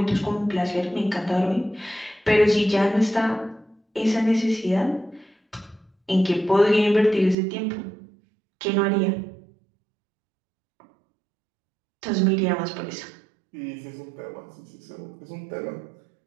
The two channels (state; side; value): drops out; left; at 7.4 s